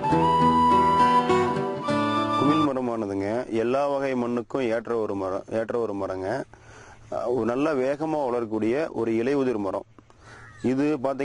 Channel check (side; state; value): both; identical; correlation 1.00